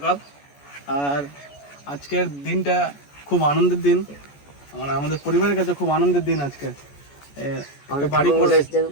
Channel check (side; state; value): right; late; 14 ms